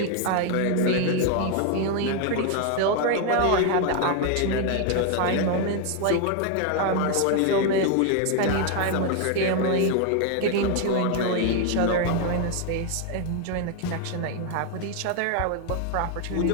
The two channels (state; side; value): different; both; correlation 0.01